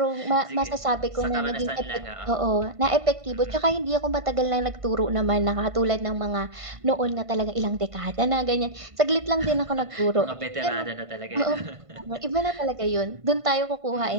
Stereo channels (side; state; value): left; late; 1.5 ms